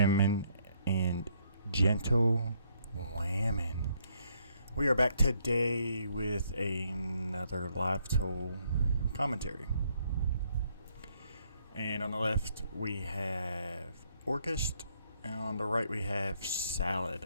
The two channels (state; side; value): inverted; both; correlation -0.70